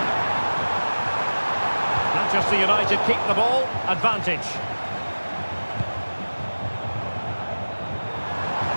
Manchester United keep the ball. Advantage.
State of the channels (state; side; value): inverted; both; correlation -1.00